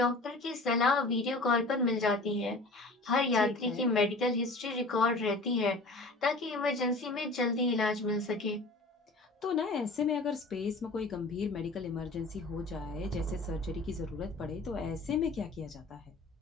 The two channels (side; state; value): right; quieter; 3.1 dB